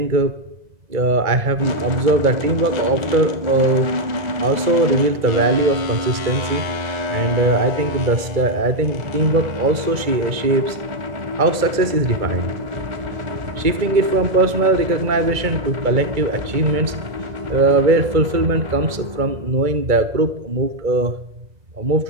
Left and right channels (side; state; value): left; late; 2.2 ms